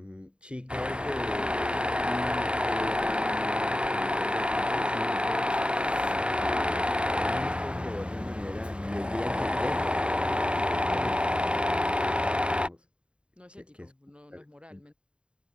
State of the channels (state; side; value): late; left; 0.054 ms